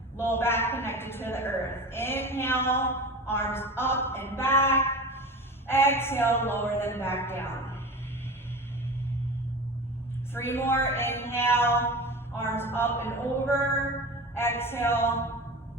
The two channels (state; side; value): normal; both; correlation 0.31